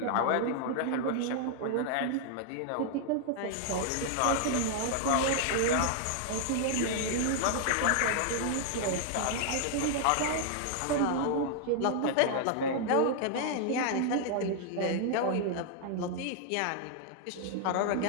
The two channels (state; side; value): different; both; correlation -0.01